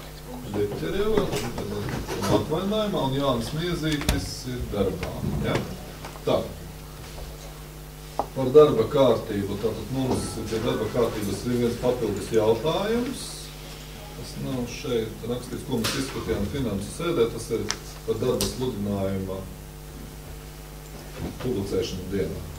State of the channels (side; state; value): both; identical; correlation 1.00